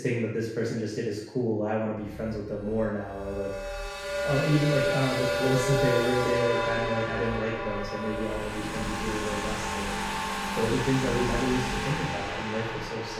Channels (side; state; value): both; identical; correlation 1.00